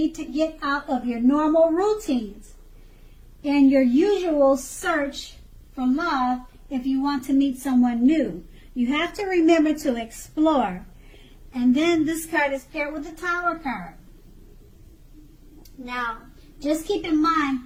to get out of your normal routines and your usual search for love if you want to meet someone new. You have to remember to explore. And then this card is paired with the Tower card. Now, just keep in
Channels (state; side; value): identical; both; correlation 1.00